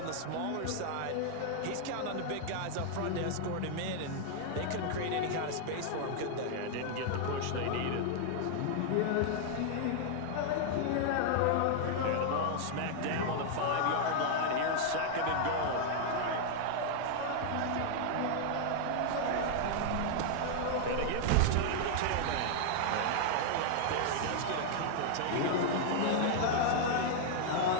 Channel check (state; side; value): different; both; correlation 0.00